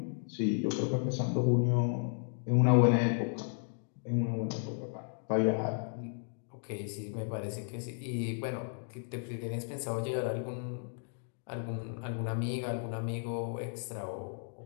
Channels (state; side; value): silent; right; digital silence